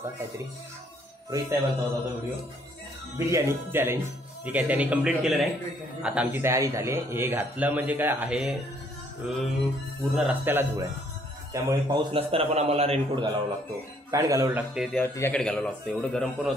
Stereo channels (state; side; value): normal; both; correlation 0.65